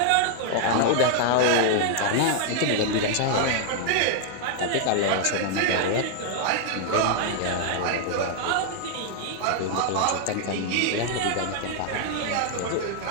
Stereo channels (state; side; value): different; both; correlation -0.01